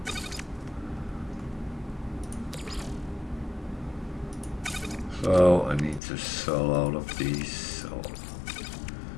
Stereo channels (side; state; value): right; drops out; at 6.0 s